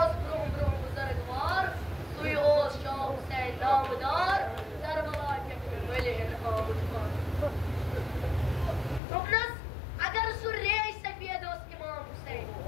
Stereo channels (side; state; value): right; drops out; at 9.0 s